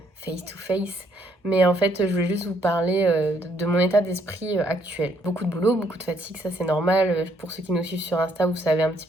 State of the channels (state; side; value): normal; both; correlation 0.69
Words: face to face, mais en fait je voulais juste vous parler de mon état d'esprit actuel. Beaucoup de boulot, beaucoup de fatigue, ça c'est normal. Pour ceux qui nous suivent sur Insta, vous savez un petit